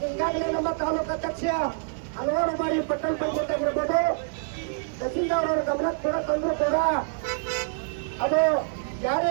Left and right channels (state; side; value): silent; left; digital silence